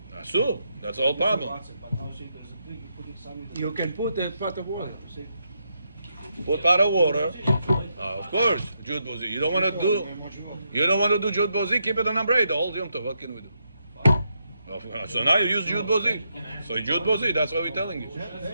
it. Asu. That's all problem. But now say there's a trick, you put it something. You can put a pot of water. You say, Put pot of water. Of course, Jude Bozi. You don't want to do. You don't want to do Jude Bozi. Keep it on number 8. The whole Yom Tov. What can we do? So now you use Jude Bozi. So Jude Bozi. That's what we're telling you.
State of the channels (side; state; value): both; inverted; correlation -0.80